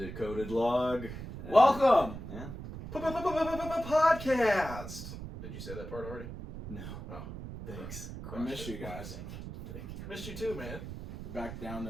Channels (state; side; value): noise; right; rumble, 10 dB below the sound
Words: Log. Welcome! Yeah. Podcast! Did you say that part already? No. Oh. Thanks. I missed you guys. Thank you. Missed you too, man. Back down